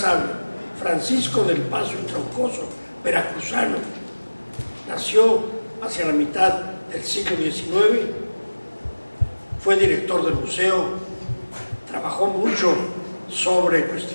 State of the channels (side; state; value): both; inverted; correlation -1.00